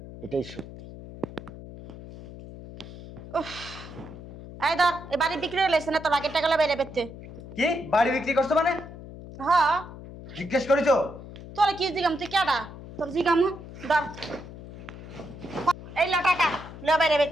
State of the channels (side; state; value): left; noise; hum, 14 dB below the sound